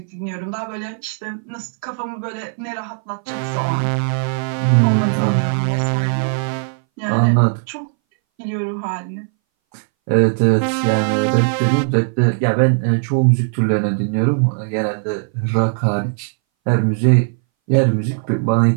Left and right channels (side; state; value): left; silent; 62 dB below the other